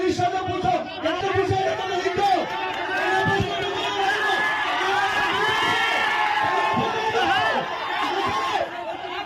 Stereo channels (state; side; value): identical; both; correlation 1.00